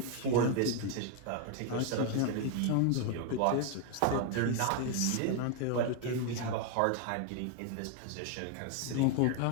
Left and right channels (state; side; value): different; both; correlation 0.01